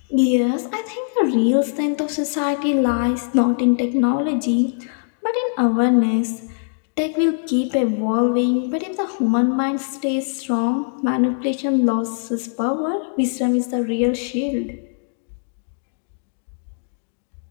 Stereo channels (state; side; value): silent; right; digital silence